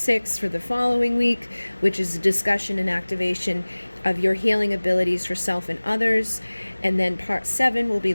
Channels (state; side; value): inverted; both; correlation -1.00